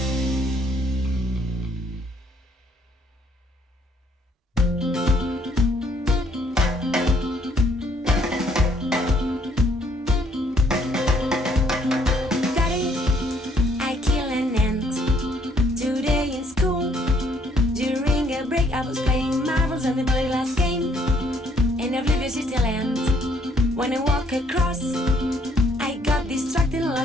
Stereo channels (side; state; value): both; normal; correlation 0.67